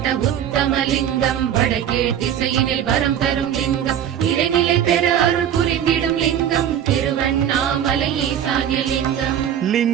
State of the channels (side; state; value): left; quieter; 9.8 dB